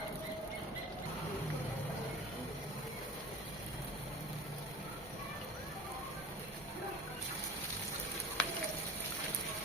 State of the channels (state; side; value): normal; both; correlation 0.39